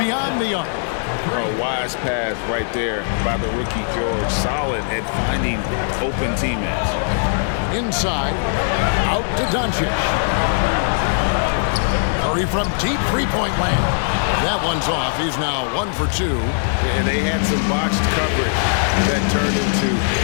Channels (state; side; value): silent; right; 64 dB below the other